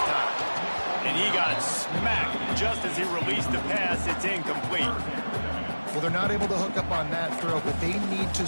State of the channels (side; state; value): both; inverted; correlation -1.00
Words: time. And he got smacked just as he released the pass. It's incomplete. Well, they're not able to hook up on that throw, but they need to